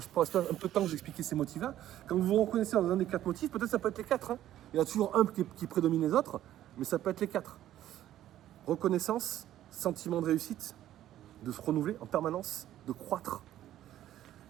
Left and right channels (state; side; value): quieter; left; 12.7 dB